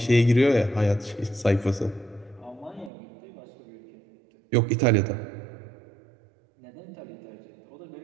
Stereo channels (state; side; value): drops out; left; at 2.9 s